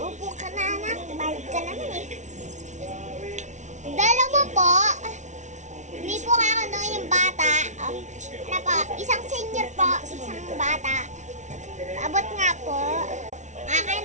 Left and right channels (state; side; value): late; left; 0.35 ms